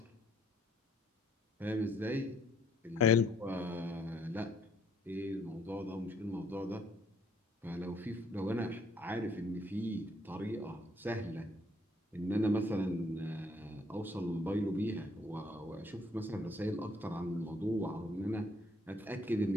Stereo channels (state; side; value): normal; both; correlation 0.65